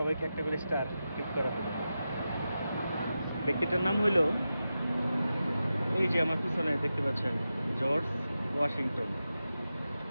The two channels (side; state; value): both; inverted; correlation -0.91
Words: একটা করে স্টার গিফট করা হবে। ব্যক্তিটার নাম হইল, এই যে আমার পিছনে দেখতে পাচ্ছেন, জর্জ ওয়াশিংটন।